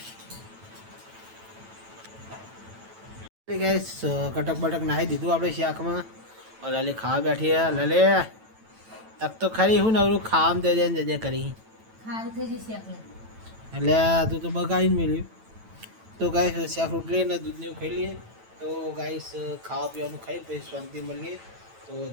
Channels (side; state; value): left; late; 9.1 ms